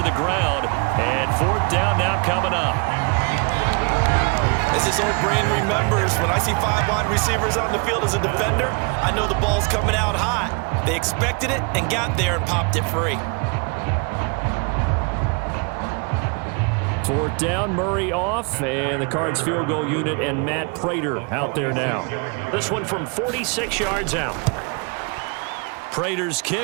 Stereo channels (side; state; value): left; quieter; 34.1 dB